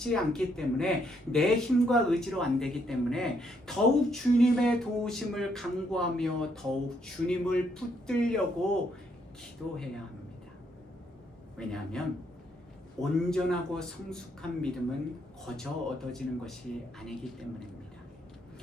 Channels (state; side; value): normal; both; correlation 0.73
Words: 않기 때문에 내 힘과 의지로 안 되기 때문에 더욱 주님의 도우심을 간구하며 더욱 주님을 붙들려고 기도해야 합니다. 왜냐하면 온전하고 성숙한 믿음은 거저 얻어지는 것이 아니기 때문입니다.